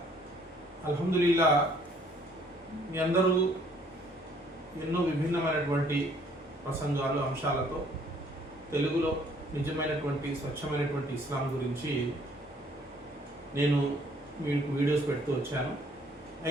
అల్హమ్దులిల్లా, మీ అందరూ ఎన్నో విభిన్నమైనటువంటి ప్రసంగాలు అంశాలతో తెలుగులో నిజమైనటువంటి స్వచ్ఛమైనటువంటి ఇస్లాం గురించి నేను మీకు వీడియోస్ పెడుతూ వచ్చాను.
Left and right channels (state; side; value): normal; both; correlation 0.61